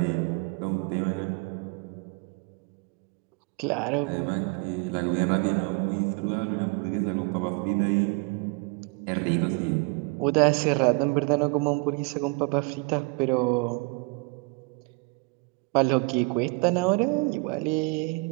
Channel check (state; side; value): quieter; left; 28.4 dB